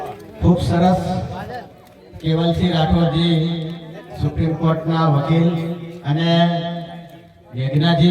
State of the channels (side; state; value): both; identical; correlation 1.00